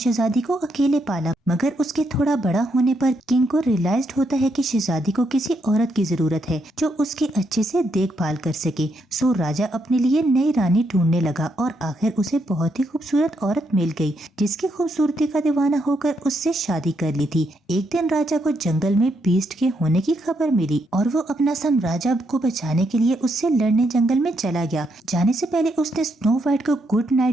को अकेले पाला। मगर उसके थोड़ा बड़ा होने पर किंग को रियलाइज होता है कि शहजादी को किसी औरत की जरूरत है जो उसकी अच्छे से देखभाल कर सके। सो राजा अपने लिए नई रानी ढूंढने लगा और आखिर उसे बहुत ही खूबसूरत औरत मिल गई जिसकी खूबसूरती का दीवाना होकर उससे शादी कर ली थी। एक दिन राजा को जंगल में बीस्ट के होने की खबर मिली और वो अपना साम्राज्य को बचाने के लिए उससे लड़ने जंगल में चला गया। जाने से पहले उसने स्नो वाइट को गुड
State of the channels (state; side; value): normal; both; correlation 0.78